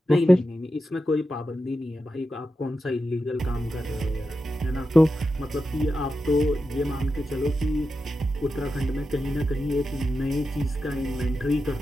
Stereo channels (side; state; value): both; normal; correlation 0.90